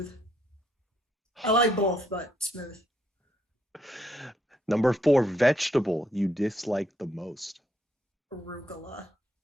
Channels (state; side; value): normal; both; correlation 0.74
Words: I like both, but smooth. Number 4, vegetable you dislike the most? Arugula.